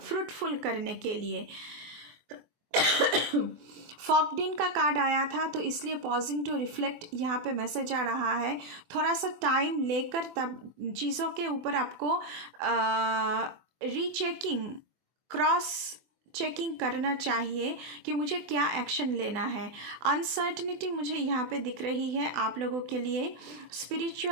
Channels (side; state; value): left; late; 24 ms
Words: करने के लिए। फॉकडिन का कार्ड आया था, तो इसलिए पॉजिंग टू रिफ्लेक्ट यहाँ पे मैसेज आ रहा है। थोड़ा सा टाइम लेकर तब चीज़ों के ऊपर आपको रीचेकिंग, क्रॉस चेकिंग करना चाहिए कि मुझे क्या एक्शन लेना है। अनसर्टनिटी मुझे यहाँ पे दिख रही है आप लोगों के लिए,